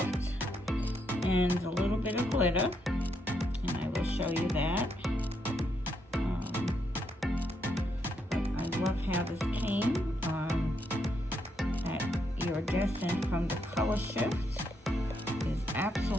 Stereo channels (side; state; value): both; normal; correlation 0.77